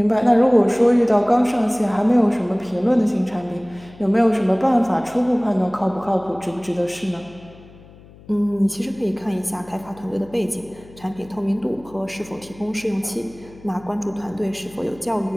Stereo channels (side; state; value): left; noise; hum, 22 dB below the sound